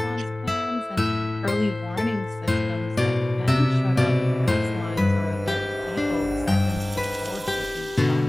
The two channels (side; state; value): both; normal; correlation 0.98